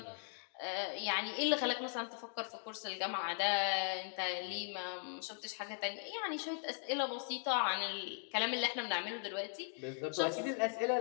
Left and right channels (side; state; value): right; silent; 52 dB below the other